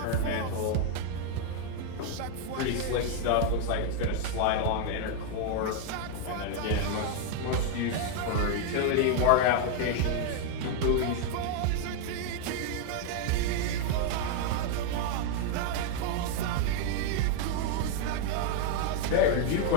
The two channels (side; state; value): both; different; correlation 0.00